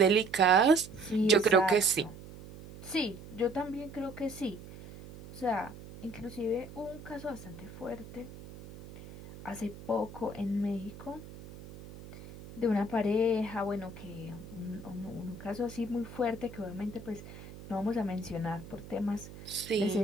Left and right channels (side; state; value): right; noise; hum, 15 dB below the sound